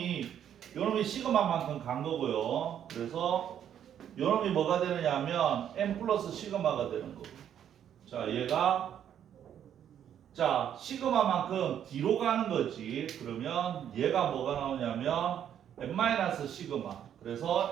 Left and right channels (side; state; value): left; quieter; 9.6 dB